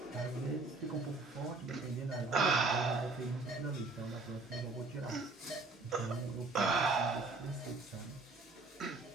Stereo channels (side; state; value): left; quieter; 3.5 dB